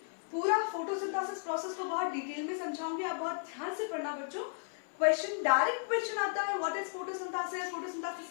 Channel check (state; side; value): silent; right; 55 dB below the other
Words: पूरा फोटोसिंथेसिस प्रोसेस को बहुत डिटेल में समझाऊंगी. आप बहुत ध्यान से पढ़ना बच्चों. क्वेश्चन, डायरेक्ट क्वेश्चन आता है, व्हाट इज फोटोसिंथेसिस,